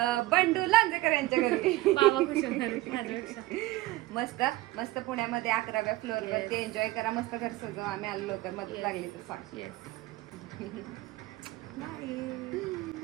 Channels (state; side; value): quieter; left; 18.1 dB